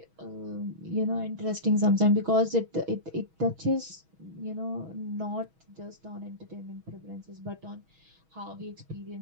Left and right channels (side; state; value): left; late; 6.2 ms